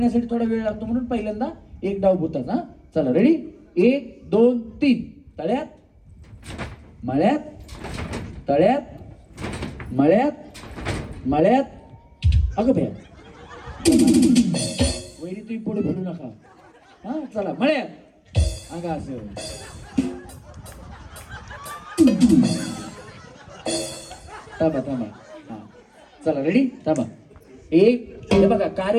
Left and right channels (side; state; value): both; identical; correlation 1.00